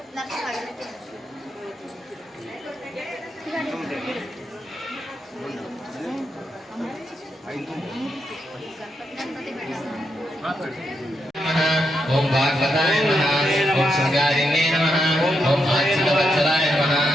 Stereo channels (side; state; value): both; normal; correlation 0.83